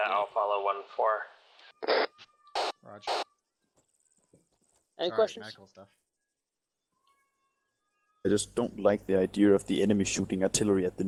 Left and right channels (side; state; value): both; identical; correlation 1.00